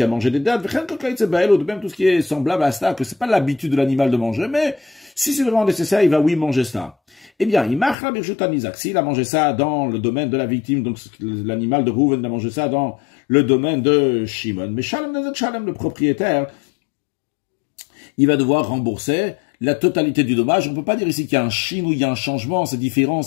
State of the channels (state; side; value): drops out; right; at 8.0 s